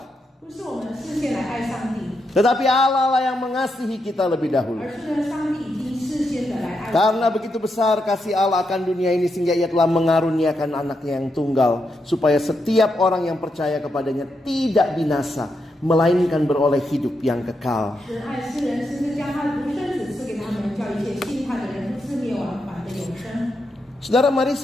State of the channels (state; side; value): normal; both; correlation 0.83